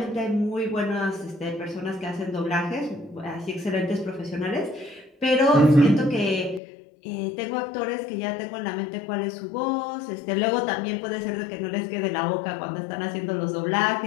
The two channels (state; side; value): drops out; right; at 6.6 s